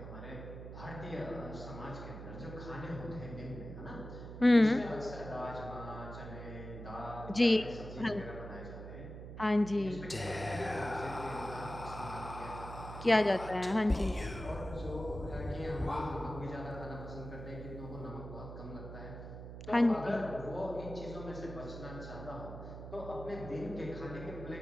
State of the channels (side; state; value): right; noise; hum, 10 dB below the sound